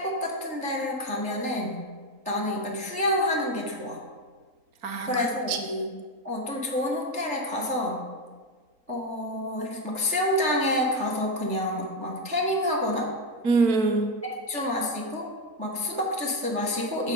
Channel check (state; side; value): late; left; 3.8 ms